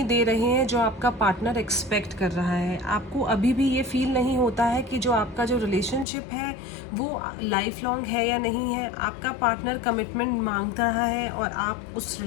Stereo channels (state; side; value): drops out; right; at 6.1 s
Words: दे रहे हैं जो आपका पार्टनर एक्सपेक्ट कर रहा है। आपको अभी भी ये फील नहीं होता है कि जो आपका जो रिलेशनशिप है वो लाइफ लॉन्ग है या नहीं है। आपका पार्टनर कमिटमेंट मांग रहा है और आप उस